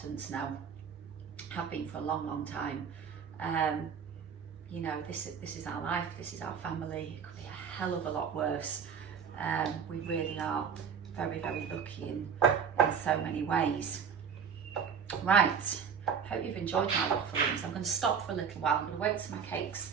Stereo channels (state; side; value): quieter; left; 6.9 dB